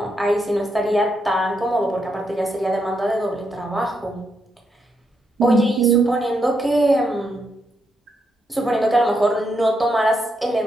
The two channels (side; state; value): both; normal; correlation 0.80